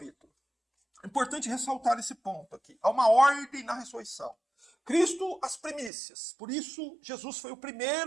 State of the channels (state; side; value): drops out; left; at 5.9 s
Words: É importante ressaltar esse ponto aqui. Há uma ordem na ressurreição. Cristo as primícias. Por isso, Jesus foi o